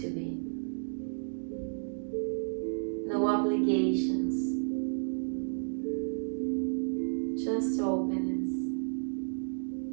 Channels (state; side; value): silent; left; digital silence